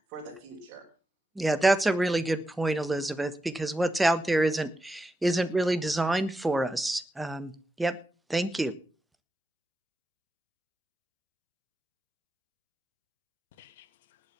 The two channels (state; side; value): normal; both; correlation 0.89